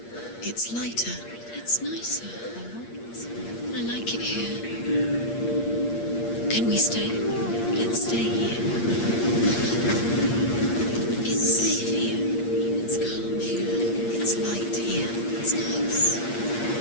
It's lighter. It's nicer. I like it here. Can we stay? Let's stay here. It's safe here. It's calm here. It's light here. It's nice.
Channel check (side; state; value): right; late; 8.5 ms